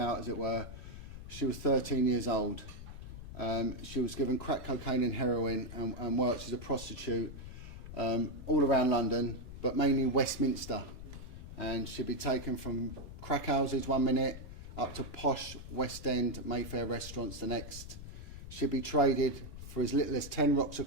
as it were. She was 13 years old. She was given crack cocaine and heroin and worked as a prostitute all around London, but mainly Westminster. And she'd be taken from crack houses 1 minute up to posh West End Mayfair restaurants the next. She'd be traded for as little as 10 rocks of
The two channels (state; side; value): noise; left; rumble, 12 dB below the sound